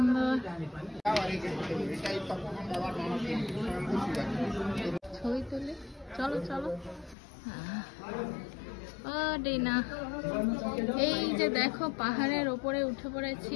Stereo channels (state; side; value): drops out; right; at 7.2 s